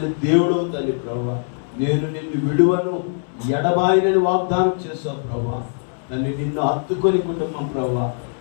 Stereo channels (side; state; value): right; silent; 65 dB below the other